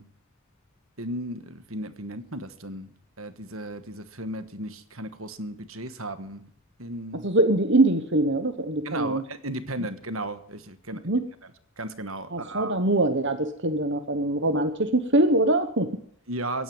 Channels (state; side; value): normal; both; correlation 0.16